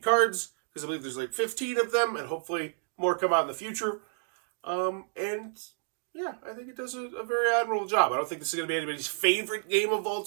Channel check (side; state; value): left; silent; digital silence